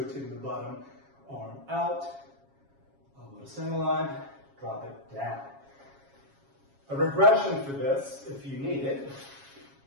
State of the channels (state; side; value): late; left; 7.3 ms